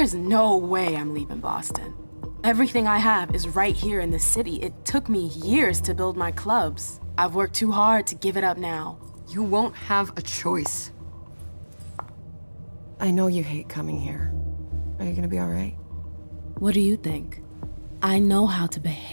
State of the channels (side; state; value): both; inverted; correlation -1.00